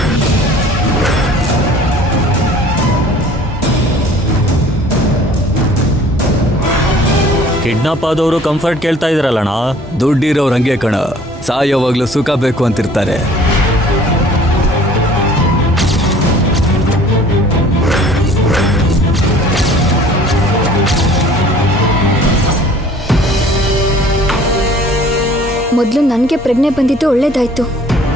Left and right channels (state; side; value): normal; both; correlation 0.51